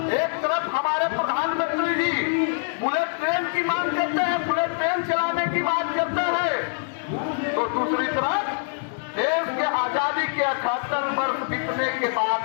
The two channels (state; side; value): silent; right; 62 dB below the other